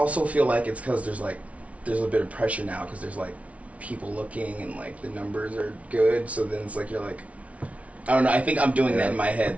feel like it's because there's a bit of pressure now because there's like people looking and like the numbers are good. So then it's like you're like, I don't know. I think I'm doing that in my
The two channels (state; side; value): late; left; 0.065 ms